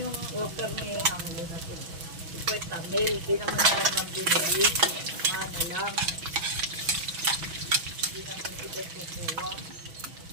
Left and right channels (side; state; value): left; late; 6.1 ms